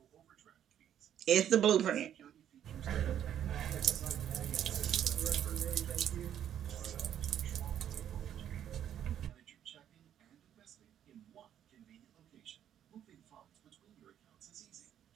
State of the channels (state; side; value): quieter; left; 10.2 dB